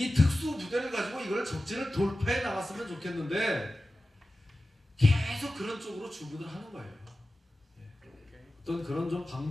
특수 부대를 가지고 이걸 적진을 돌파해 나갔으면 좋겠는데 계속 그런 쪽으로 주문을 하는 거예요. 어떤 그런 좀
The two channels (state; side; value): normal; both; correlation 0.95